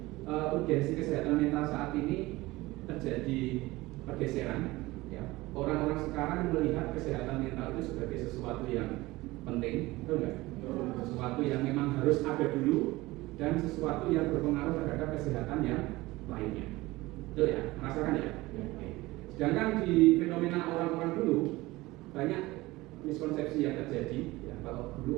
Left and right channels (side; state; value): left; quieter; 19.8 dB